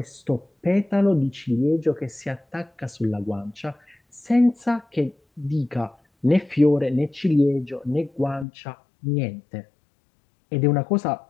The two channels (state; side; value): drops out; right; at 8.5 s